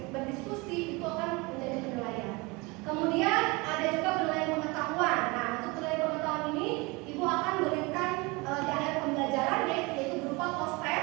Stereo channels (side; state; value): left; quieter; 25.9 dB